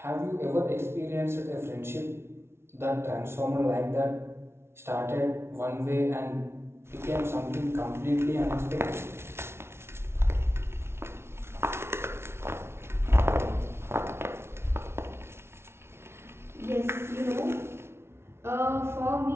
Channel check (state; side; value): late; left; 0.12 ms